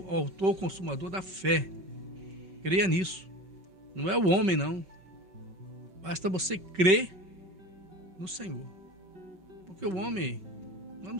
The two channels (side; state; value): left; late; 5.3 ms